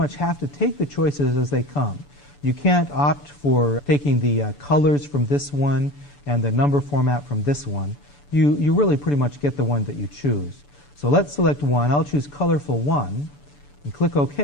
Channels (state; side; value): late; right; 6.9 ms